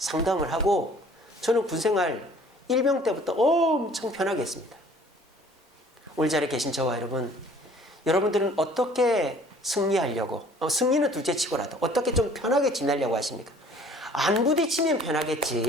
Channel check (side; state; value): both; normal; correlation 0.53